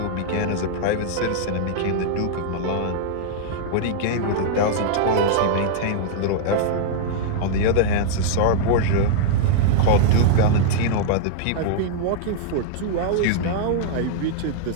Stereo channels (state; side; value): different; both; correlation -0.01